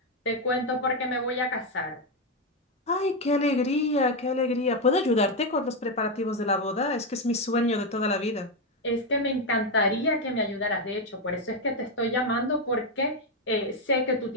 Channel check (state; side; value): normal; both; correlation 0.06